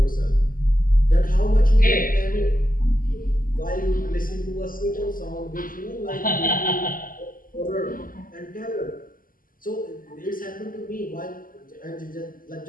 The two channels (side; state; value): right; late; 0.41 ms